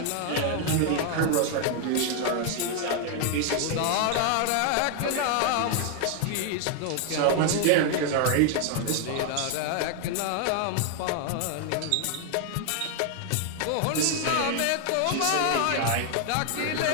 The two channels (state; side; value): different; both; correlation 0.00